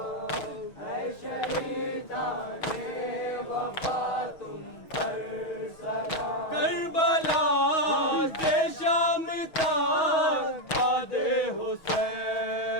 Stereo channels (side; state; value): right; late; 6.2 ms